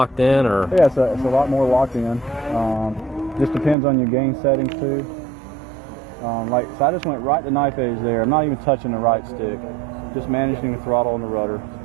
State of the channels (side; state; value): left; drops out; at 3.8 s